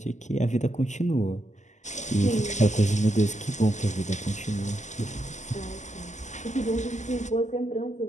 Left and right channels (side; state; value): right; late; 0.34 ms